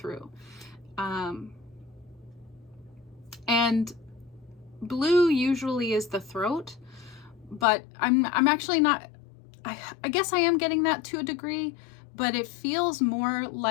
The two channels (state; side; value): drops out; right; at 7.7 s